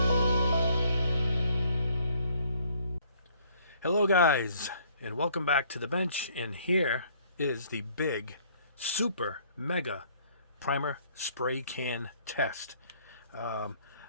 guys, and welcome back to the bench, and here is the big super mega primer spray can test. I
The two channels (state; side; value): inverted; both; correlation -0.62